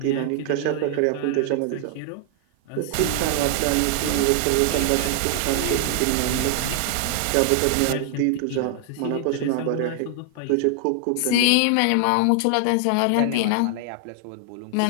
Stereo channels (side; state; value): both; different; correlation 0.00